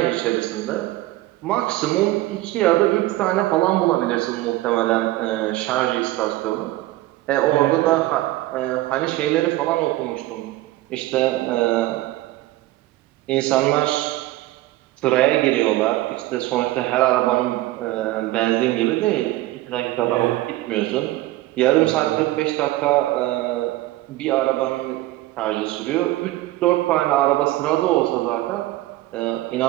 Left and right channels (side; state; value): left; quieter; 17.1 dB